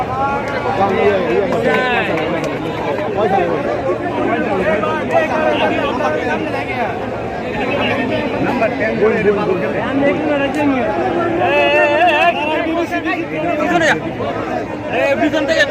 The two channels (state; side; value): identical; both; correlation 1.00